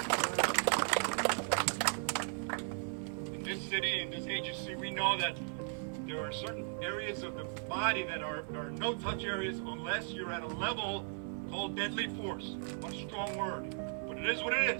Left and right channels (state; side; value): silent; left; 53 dB below the other